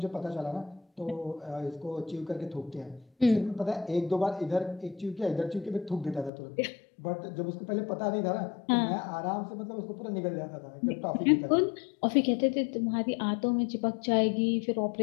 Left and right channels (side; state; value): right; drops out; at 6.3 s